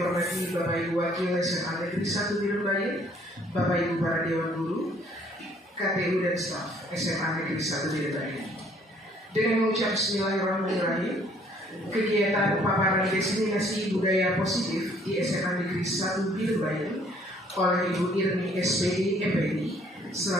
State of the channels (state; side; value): normal; both; correlation 0.61